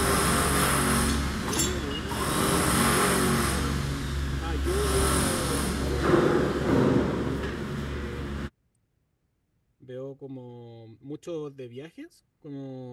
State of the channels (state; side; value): identical; both; correlation 1.00